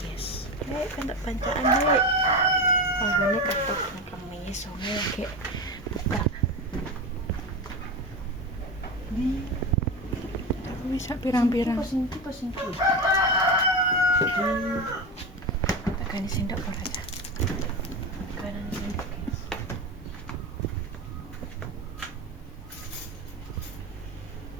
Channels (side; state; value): both; normal; correlation 0.21